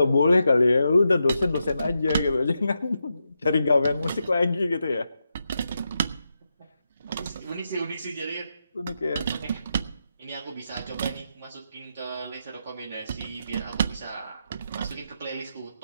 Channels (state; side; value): inverted; both; correlation -0.86